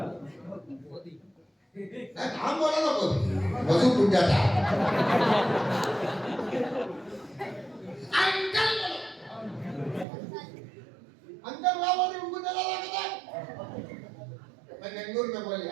हम बोला ना, कोई वजू टूट जाता है। अंकल वहां बोली उनको दिलाना का क्या। मैं बेंगलुरु में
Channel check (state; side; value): drops out; left; at 10.1 s